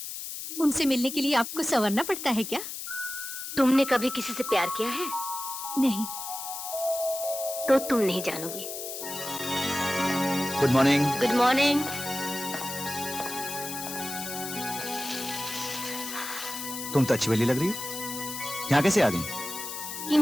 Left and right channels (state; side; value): noise; left; hiss, 7 dB below the sound